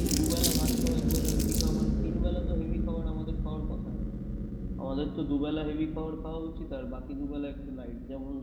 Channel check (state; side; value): identical; both; correlation 1.00